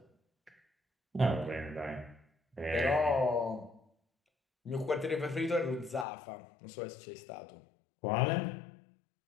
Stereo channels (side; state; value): right; drops out; at 6.1 s